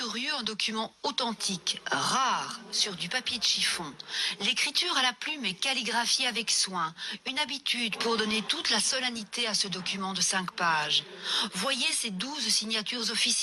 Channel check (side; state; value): both; identical; correlation 1.00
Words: un document authentique, rare, sur du papier de chiffon. L'écriture à la plume est calligraphiée avec soin, une habitude pour donner toute la solennité à ce document de 5 pages. Voyez ces 12 signatures